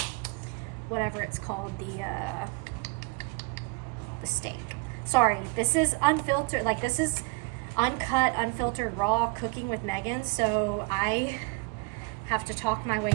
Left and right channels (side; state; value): left; quieter; 30.2 dB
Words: whatever it's called, the steak. Sorry, this is unfiltered, like this is uncut, unfiltered, raw cooking with Megan, so I have to talk my way